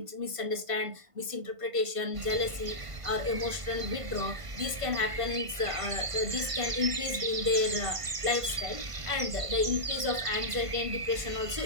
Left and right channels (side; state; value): left; late; 1.5 ms